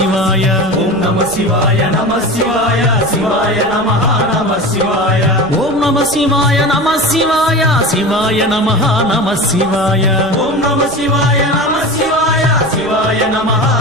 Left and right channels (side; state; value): right; noise; rumble, 18 dB below the sound